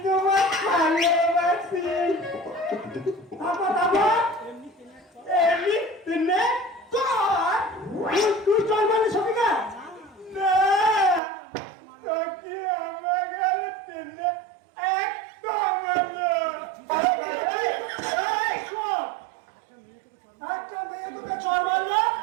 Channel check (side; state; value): left; drops out; at 11.2 s